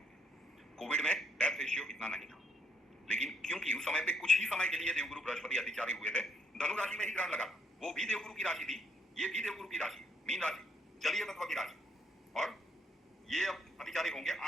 कोविड में डेथ रेशियो इतना नहीं था, लेकिन क्योंकि उस समय पे कुछ ही समय के लिए देवगुरु बृहस्पति अतिचारी हुए थे, धनु राशि में ही ग्रहण लगा, वो भी देवगुरु की राशि थी, ये भी देवगुरु की राशि, मीन राशि, जलीय तत्व की राशि, और ये अब अतिचारी होंगे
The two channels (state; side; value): normal; both; correlation 0.71